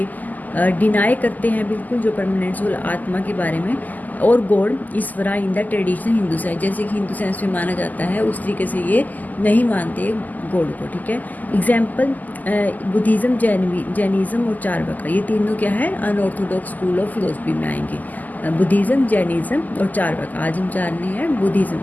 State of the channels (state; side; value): late; right; 0.082 ms